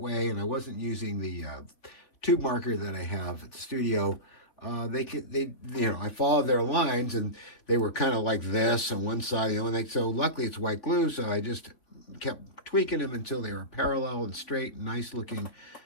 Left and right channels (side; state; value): right; late; 3.7 ms